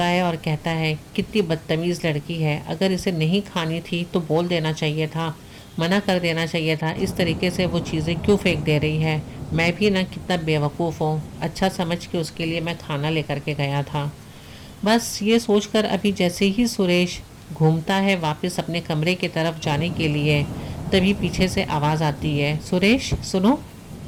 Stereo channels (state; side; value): identical; both; correlation 1.00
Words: है और कहता है, कितनी बदतमीज़ लड़की है, अगर इसे नहीं खानी थी तो बोल देना चाहिए था, मना कर देना चाहिए था, इस तरीके से वो चीज़ें क्यों फेंक दे रही है। मैं भी ना कितना बेवकूफ़ हूँ, अच्छा समझ के उसके लिए मैं खाना लेकर के गया था। बस ये सोचकर अभी जैसे ही सुरेश घूमता है वापस अपने कमरे की तरफ जाने के लिए, तभी पीछे से आवाज़ आती है, सुरेश सुनो।